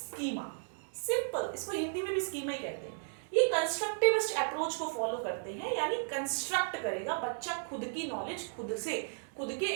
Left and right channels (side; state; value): left; silent; digital silence